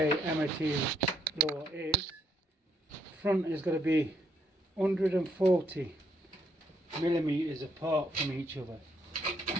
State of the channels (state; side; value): normal; both; correlation 0.73